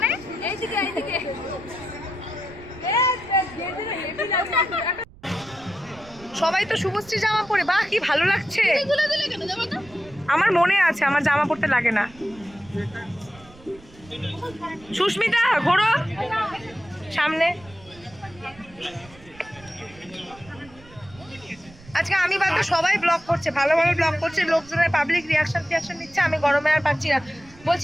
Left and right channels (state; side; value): noise; right; rumble, 23 dB below the sound